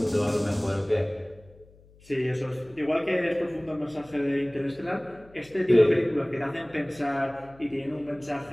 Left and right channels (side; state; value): left; noise; hum, 26 dB below the sound